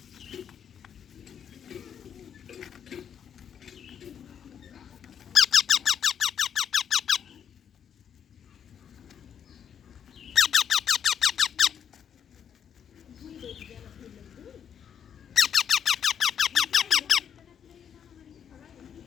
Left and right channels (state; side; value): quieter; right; 8.3 dB